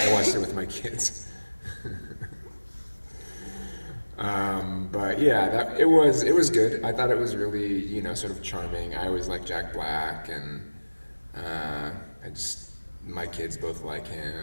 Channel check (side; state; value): both; inverted; correlation -1.00